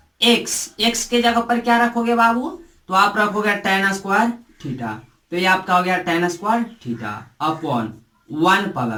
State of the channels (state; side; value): identical; both; correlation 1.00